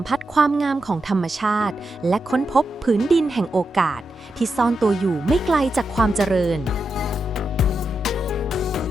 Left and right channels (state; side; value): normal; both; correlation 0.87